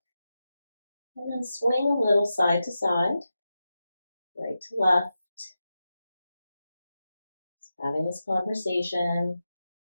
And then swing a little side to side, right to left, having this conversation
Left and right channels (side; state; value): both; inverted; correlation -0.91